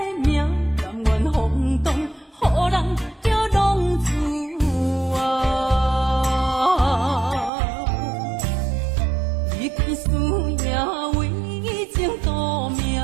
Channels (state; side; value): drops out; left; at 7.5 s